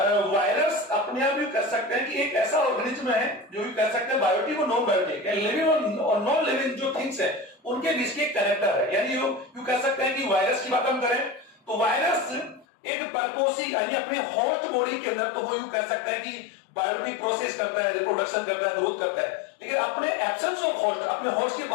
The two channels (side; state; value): right; drops out; at 12.7 s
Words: वायरस अपने आप यू कह सकते हैं कि एक ऐसा ऑर्गेनिज्म है जो यू कह सकते हैं बायोटिक और नॉन बायोटिक, लिविंग और नॉन लिविंग जो थिंग्स है उनके बीच के कनेक्टर है। यानी यू कह सकते हैं कि वायरस की बात हम करें तो वायरस एक परपोसी यानी अपने होस्ट बॉडी के अंदर तो वो यू कह सकता है कि बायोटिक प्रोसेस करता है, रिप्रोडक्शन करता है, ग्रोथ करता है, लेकिन अपने एब्सेंस ऑफ होस्ट, अपने होस्ट के